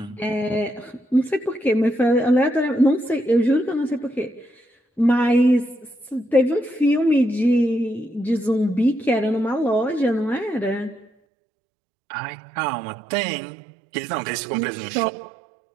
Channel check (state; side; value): drops out; left; at 11.1 s